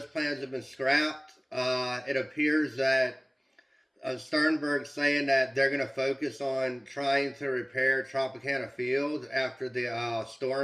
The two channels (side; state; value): both; identical; correlation 1.00